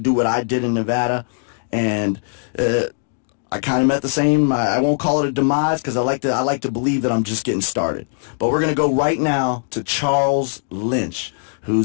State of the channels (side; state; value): right; silent; digital silence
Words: what I did in Nevada, and I kind of met the same. I won't call it a demise because I like to believe that I'm just getting started. But we're going to go right now to Charles Lynch,